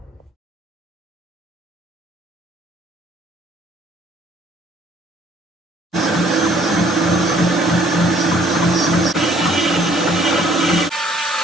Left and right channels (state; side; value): normal; both; correlation 0.60